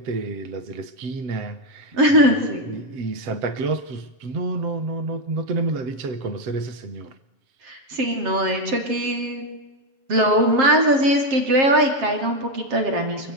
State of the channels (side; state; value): left; late; 7.5 ms